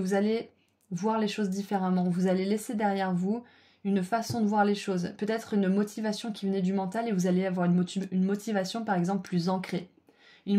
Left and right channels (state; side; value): identical; both; correlation 1.00